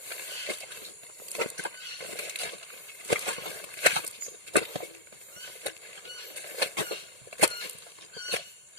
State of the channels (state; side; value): late; left; 1.8 ms